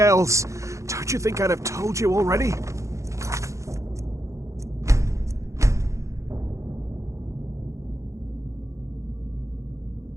Don't you think I'd have told you already?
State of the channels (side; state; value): left; late; 0.15 ms